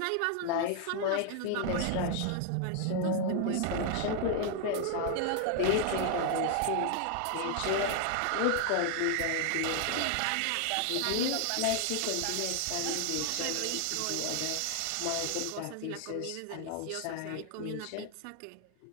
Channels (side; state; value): both; different; correlation 0.00